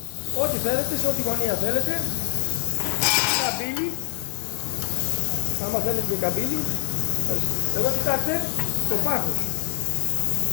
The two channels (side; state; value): right; silent; digital silence